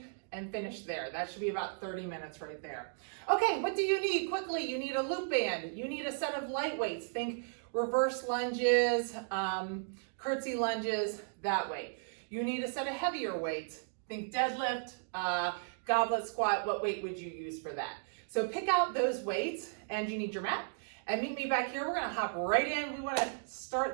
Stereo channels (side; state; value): left; silent; digital silence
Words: and finish there. That should be about 30 minutes right there. Okay, what do you need? Quickly, you need a loop band. You need a set of light weights. Think reverse lunges, curtsy lunges, that way. You need a set of heavier weights. Think deadlift, goblet squat. What weight would you use for that? So pick out those weights, and you need your mat. And meet me back here. We're gonna hop right in. We wanna start